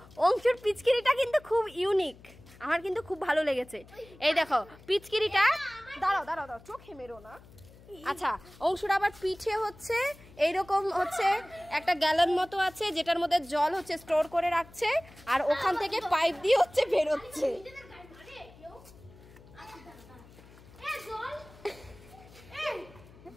অংশুর পিচকিরিটা কিন্তু খুব ইউনিক, আমার কিন্তু খুব ভালো লেগেছে। এই দেখো পিচকিরিটা, দাঁড়াও চোখে মেরো না। আচ্ছা অংশুর আবার পিঠে হচ্ছে এইরকম হচ্ছে একটা গ্যালন মতো আছে, যেটার মধ্যে জল হচ্ছে স্টোর করে রাখছে, আর ওখান থেকে পাইপ দিয়ে হচ্ছে বেরোচ্ছে।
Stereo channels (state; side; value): noise; left; hum, 22 dB below the sound